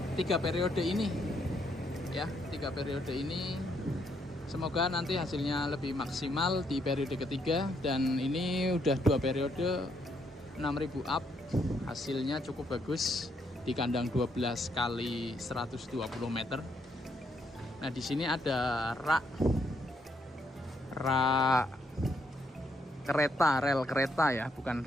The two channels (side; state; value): both; normal; correlation 0.74